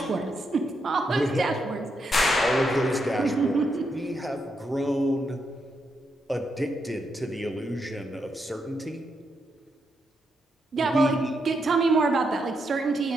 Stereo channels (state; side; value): normal; both; correlation 0.81